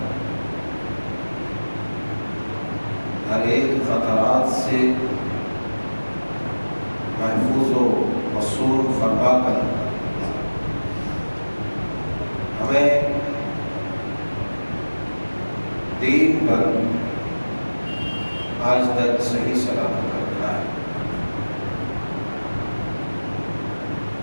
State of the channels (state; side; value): inverted; both; correlation -1.00